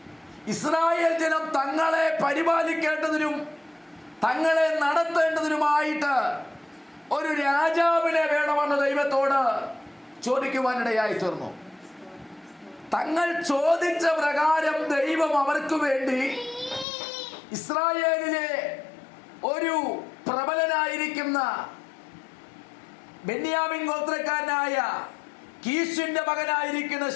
ഇസ്രായേൽ ജനം തങ്ങളെ പരിപാലിക്കേണ്ടതിനും തങ്ങളെ നടത്തേണ്ടതിനുമായിട്ട് ഒരു രാജാവിനെ വേണമെന്ന് ദൈവത്തോട് ചോദിക്കുവാനിടയായി തീർന്നു. തങ്ങൾ ചോദിച്ച പ്രകാരം ദൈവം അവർക്ക് വേണ്ടി ഇസ്രായേലിലെ ഒരു പ്രബലനായിരിക്കുന്ന ബെന്യാമിൻ ഗോത്രക്കാരനായ കീശിന്റെ മകനായിരിക്കുന്ന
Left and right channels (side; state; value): right; drops out; at 16.9 s